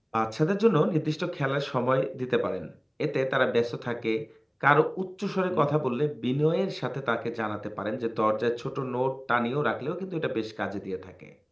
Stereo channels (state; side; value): identical; both; correlation 1.00